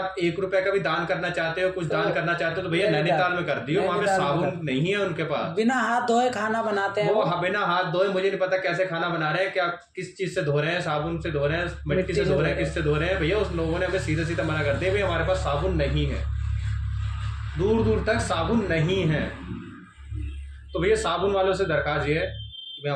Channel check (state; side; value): identical; both; correlation 1.00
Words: 1 रुपए का भी दान करना चाहते हो, कुछ दान करना चाहते हो, तो भैया नैनीताल में कर दियो। वहां पे साबुन नहीं है उनके पास। बिना हाथ धोए खाना बनाते हैं वो। बिना हाथ धोए, मुझे नहीं पता कैसे खाना बना रहे हैं, क्या किस चीज से धो रहे हैं, साबुन से धो रहे हैं, मिट्टी से धो रहे हैं, किससे धो रहे हैं। भैया उस लोगों ने हमें सीधा सीधा मना कर दिया, भैया हमारे पास साबुन नहीं है, दूर दूर तक साबुन नहीं है। तो भैया साबुन वालों से दरखास्त ये है,